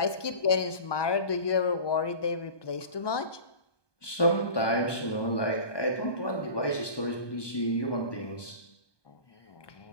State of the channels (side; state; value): right; late; 1.2 ms